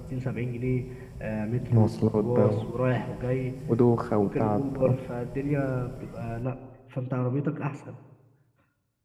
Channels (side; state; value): both; identical; correlation 1.00